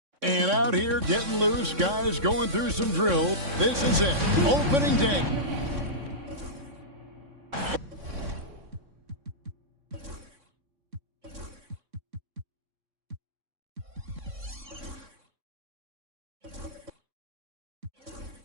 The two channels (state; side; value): late; left; 3.6 ms